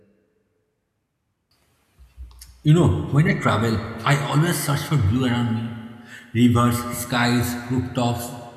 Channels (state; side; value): identical; both; correlation 1.00